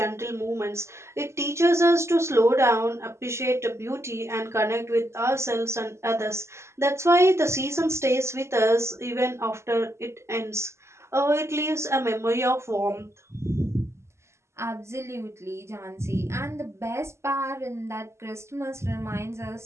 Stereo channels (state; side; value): late; left; 0.13 ms